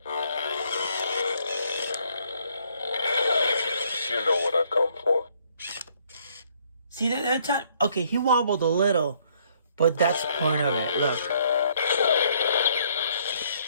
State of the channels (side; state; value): both; inverted; correlation -0.66